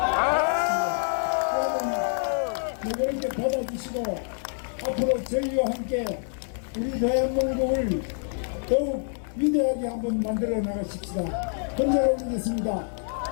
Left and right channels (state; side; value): silent; right; digital silence